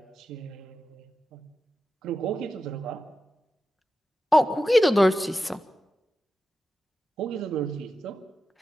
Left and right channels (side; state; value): both; normal; correlation 0.91